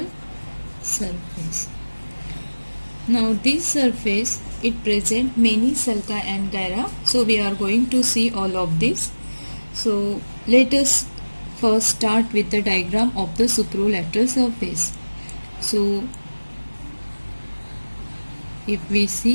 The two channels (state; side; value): inverted; both; correlation -1.00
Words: surface. Now this surface, it presents many sulci and gyra. So we are going to see all of this. So let us first start with the diagram of the supralateral surface. So if we